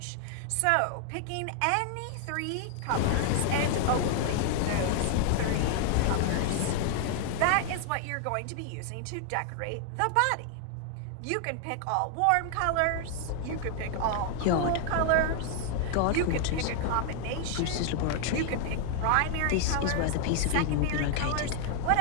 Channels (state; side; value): different; both; correlation 0.00